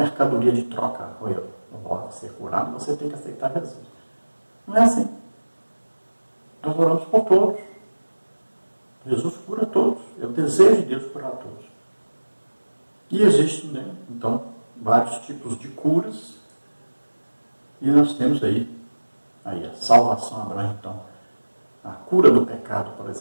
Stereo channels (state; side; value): inverted; both; correlation -1.00